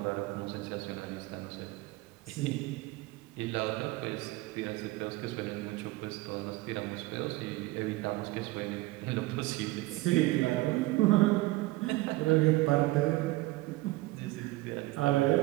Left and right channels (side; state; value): left; quieter; 19.6 dB